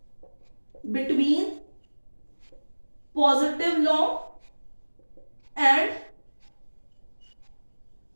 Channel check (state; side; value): inverted; both; correlation -1.00